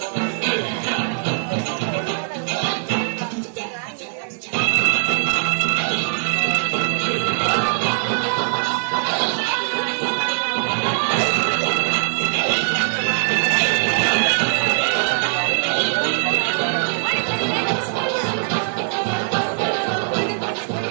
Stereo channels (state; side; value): silent; left; digital silence